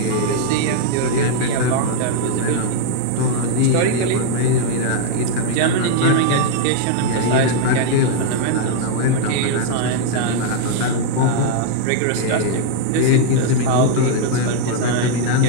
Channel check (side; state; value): both; different; correlation -0.01